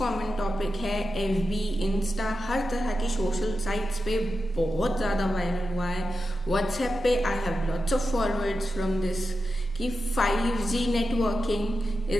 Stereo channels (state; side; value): normal; both; correlation 0.90